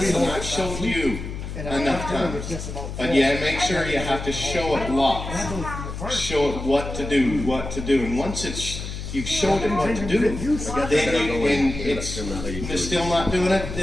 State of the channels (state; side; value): noise; left; hum, 7 dB below the sound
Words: I've showed you enough times. But yeah, make sure you have to show it lots. Show it what to do, what to do. And once you've showed it what to do, then and it's still not doing it,